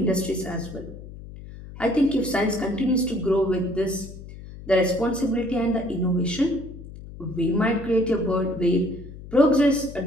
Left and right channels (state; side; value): noise; left; hum, 14 dB below the sound